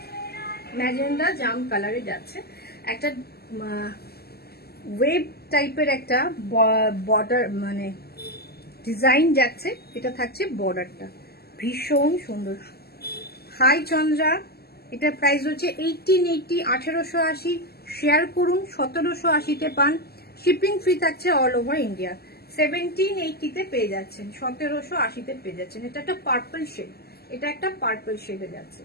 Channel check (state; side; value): late; right; 0.46 ms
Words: ম্যাজেন্ডা জাম কালারে যাচ্ছে। একটা ওয়েব টাইপের একটা বর্ডার মানে ডিজাইন যাচ্ছে। এটা থাকছে বর্ডারটা, ভীষণ সুন্দর। হাই চন্দ্রা, এটার প্রাইস হচ্ছে 1880, 1880। শেয়ার করুন, 1780-তে পান। শিপিং ফ্রি থাকছে অল ওভার ইন্ডিয়া। 1780-তে পেয়ে যাচ্ছেন, 1780-তে পেয়ে যাচ্ছেন। এটা একটা পার্পল শেড, এটা একটা পার্পল শেডে যাচ্ছে।